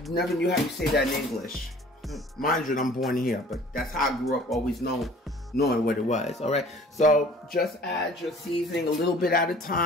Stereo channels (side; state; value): both; normal; correlation 0.50